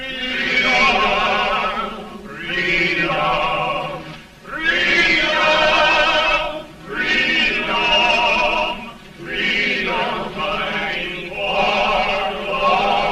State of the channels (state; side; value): identical; both; correlation 1.00